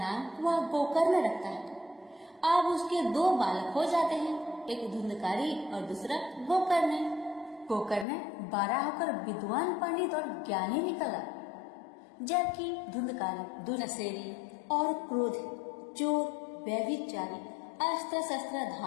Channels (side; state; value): right; drops out; at 8.1 s